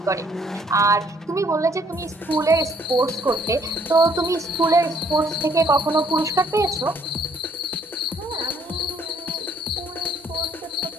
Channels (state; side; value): normal; both; correlation 0.65